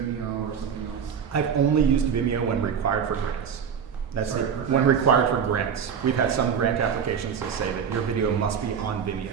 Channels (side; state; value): left; quieter; 7.3 dB